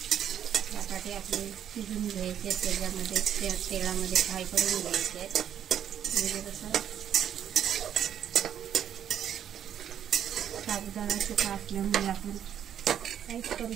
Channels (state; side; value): quieter; left; 9.5 dB